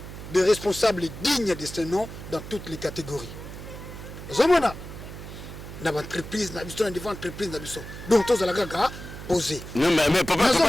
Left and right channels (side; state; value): right; noise; hum, 12 dB below the sound